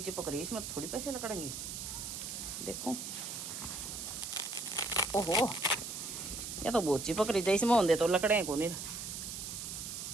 चिपक रही, इसमें थोड़ी पैसे लकड़ेंगे। देखो ओहो, या तो बहुत चिपक रही है, इसमें होंगे तो लकड़े को नहीं,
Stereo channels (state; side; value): noise; right; hiss, 6 dB below the sound